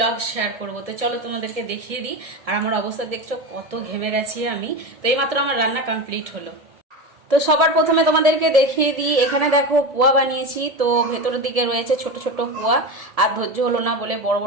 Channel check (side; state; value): left; late; 1.7 ms